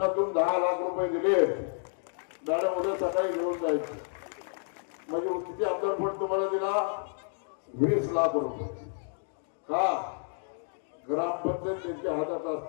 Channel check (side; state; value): right; silent; digital silence